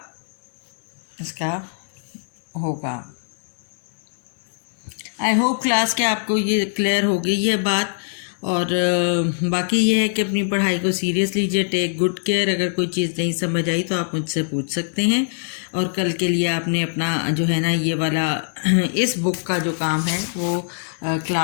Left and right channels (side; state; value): right; silent; digital silence